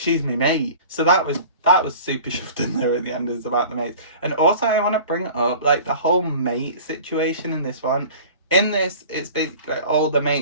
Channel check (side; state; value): both; inverted; correlation -0.42